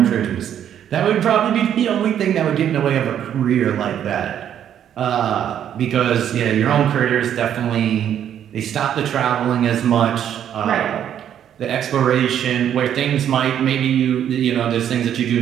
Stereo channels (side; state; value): left; quieter; 9.8 dB